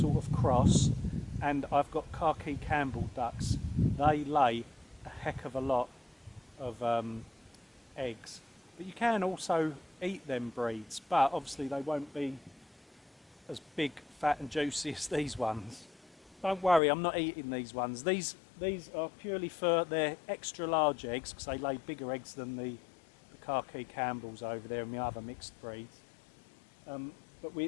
of cross, and I've got khaki Campbell ducks. They lay a heck of a lot of eggs. But you can also eat them breeds, but obviously they won't be as big, fat and juicy as these ones. Don't worry, I'm not eating these ones. These are purely for their extra large eggs, because they lay bigger eggs than the khaki Campbells over there and the other mixed breeds. But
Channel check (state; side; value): drops out; right; at 16.8 s